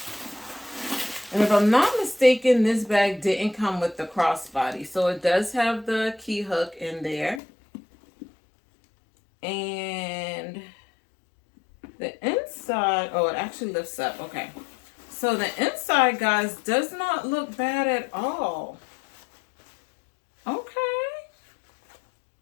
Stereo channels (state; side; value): drops out; right; at 7.4 s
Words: And if I'm not mistaken, this bag didn't come with the crossbody. So it does have the key hook in there. And the inside, oh, it actually lifts up. Okay. So the inside, guys, does not look bad at all. Okay.